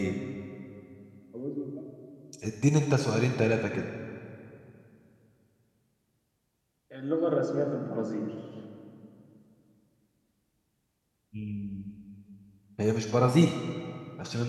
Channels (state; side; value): identical; both; correlation 1.00